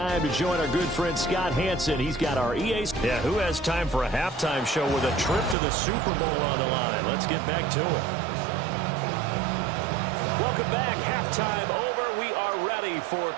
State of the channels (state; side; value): drops out; left; at 5.6 s